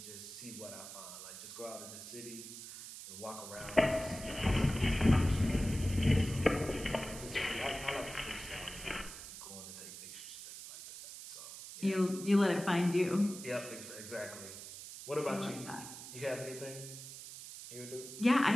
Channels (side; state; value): right; noise; hiss, 12 dB below the sound